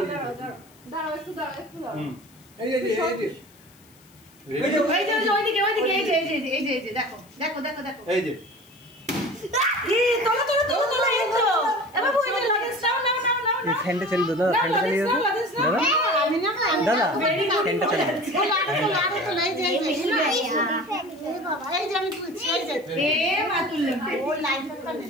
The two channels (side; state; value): left; noise; hiss, 28 dB below the sound